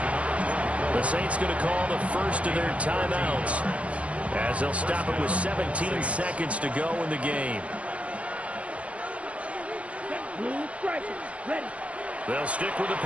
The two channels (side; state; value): left; late; 0.063 ms